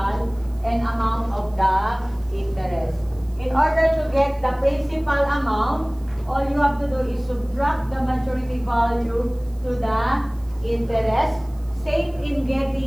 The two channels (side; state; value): right; noise; hiss, 29 dB below the sound